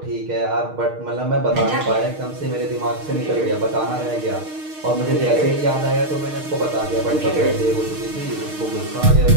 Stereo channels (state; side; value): late; left; 6.5 ms